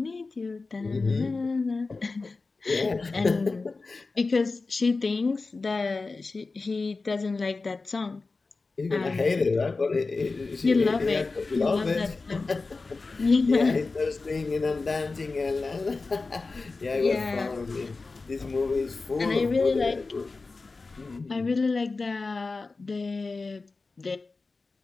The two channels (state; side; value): quieter; right; 3.9 dB